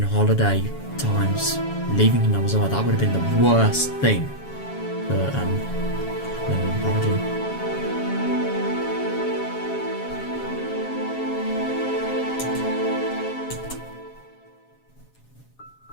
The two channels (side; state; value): right; late; 7.3 ms